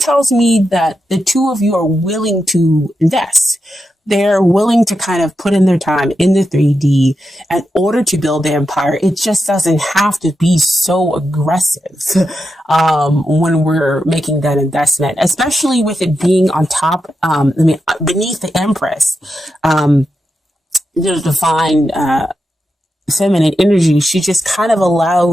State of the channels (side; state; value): both; normal; correlation 0.88